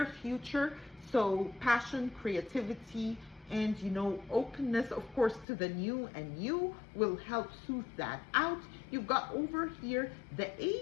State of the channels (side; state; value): right; drops out; at 5.5 s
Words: future. So passion, creativity, and openness, of course, to the new and you will help soothe that out. You've got over here the